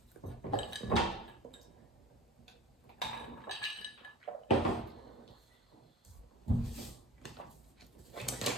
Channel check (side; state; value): both; normal; correlation 0.38